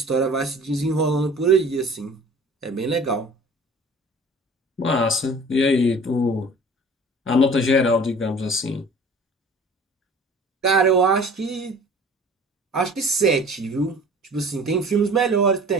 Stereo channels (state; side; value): normal; both; correlation 0.46